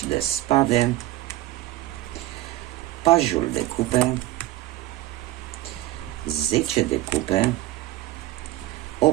de spade, pajul de cupe, 10 de cupe,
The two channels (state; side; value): quieter; left; 16.8 dB